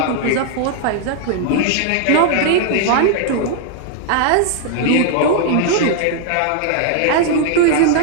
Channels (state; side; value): different; both; correlation 0.00